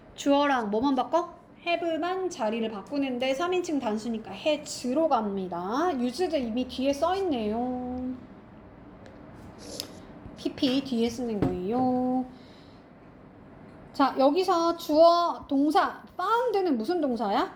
주어랑 뭐만 바꿔? have만 자리를 바꾸는데 3인칭 단수니까 has로 갑니다. used 이미 뒤에 써있네요. pp 뒤에 쓰는 거예요. 자, 여기서 주어 동사 found는 무슨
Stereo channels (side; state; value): both; identical; correlation 1.00